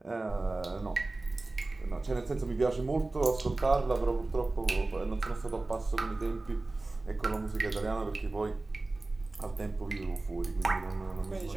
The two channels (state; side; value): quieter; left; 3.1 dB